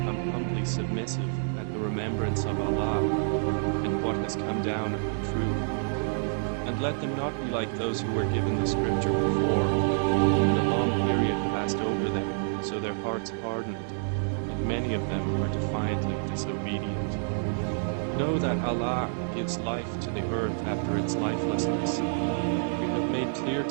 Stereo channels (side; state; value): left; silent; digital silence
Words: humbly submissive at the remembrance of Allah, and what has come down of the truth? And let them not be like those who were given the scripture before, and a long period passed over them, so their hearts hardened, and many of them are defiantly disobedient. Know that Allah gives life to the earth after its lifelessness. We have made clear